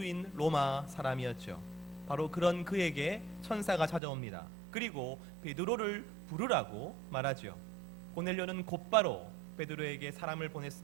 로마 사람이었죠. 바로 그런 그에게 천사가 찾아옵니다. 그리고 베드로를 부르라고 말하죠. 고넬료는 곧바로 베드로에게 사람을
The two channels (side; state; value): left; drops out; at 4.0 s